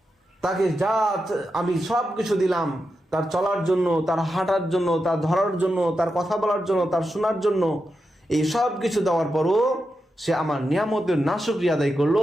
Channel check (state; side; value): normal; both; correlation 0.88